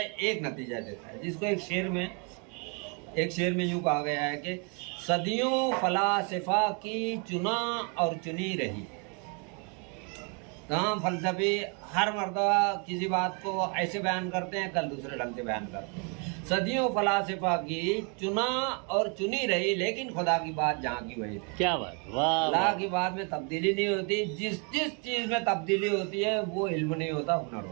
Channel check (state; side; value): quieter; left; 36.0 dB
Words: एक नतीजा देता है, जिसको एक शेर में यूँ कहा गया है कि सदियों फलासफा की चुना और चुनी रही। तमाम फलसफे हर मर्तबा किसी बात को ऐसे बयान करते हैं, कल दूसरे ढंग से बयान करते हैं। सदियों फलासफा की चुना और चुनी रही, लेकिन खुदा की बात जहाँ की वही रही। क्या बात, वाह। अल्लाह की बात में तब्दीली नहीं होती। जिस चीज़ में तब्दीली होती है वो इल्म नहीं होता, हुनर